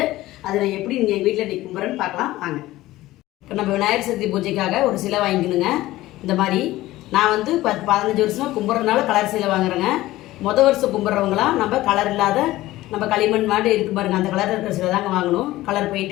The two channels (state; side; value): quieter; right; 16.8 dB